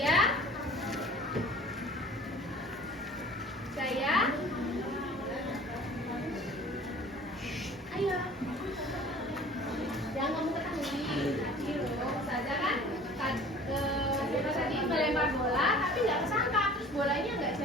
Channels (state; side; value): normal; both; correlation 0.46